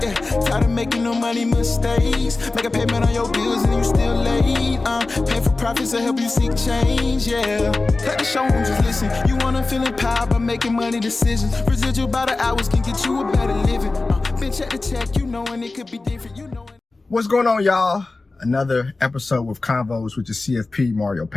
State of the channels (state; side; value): quieter; right; 3.4 dB